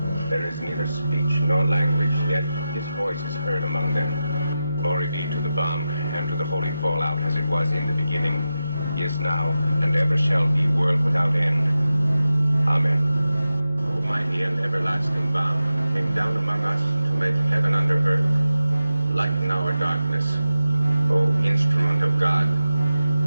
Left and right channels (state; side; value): inverted; both; correlation -0.92